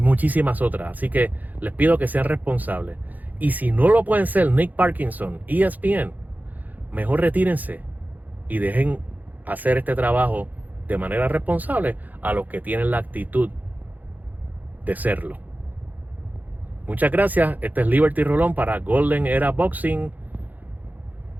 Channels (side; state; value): left; late; 0.082 ms